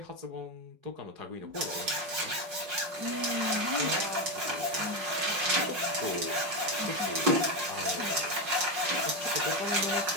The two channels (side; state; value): left; late; 5.5 ms